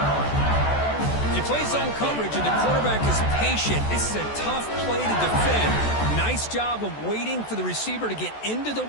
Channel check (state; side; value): late; right; 14 ms